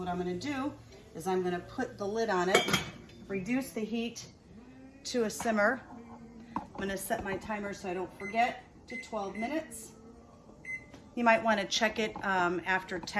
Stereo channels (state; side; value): identical; both; correlation 1.00